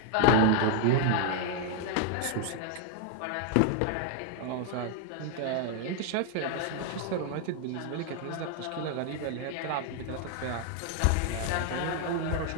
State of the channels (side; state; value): both; different; correlation 0.00